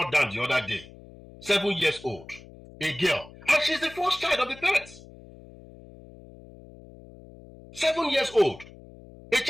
down the other day, 7 years old, a girl, and she's the first child of the parents. 7 years old. A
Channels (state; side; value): noise; left; hum, 20 dB below the sound